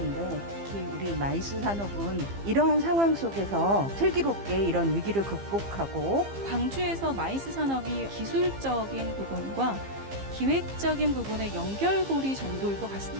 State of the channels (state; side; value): late; left; 15 ms